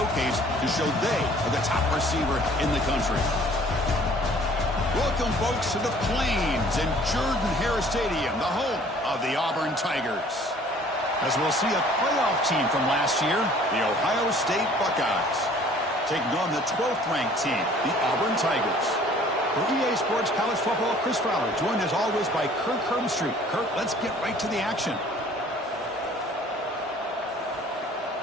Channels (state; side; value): normal; both; correlation 0.54